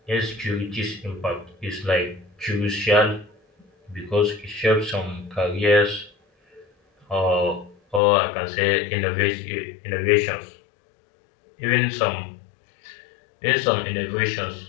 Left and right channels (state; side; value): drops out; right; at 8.0 s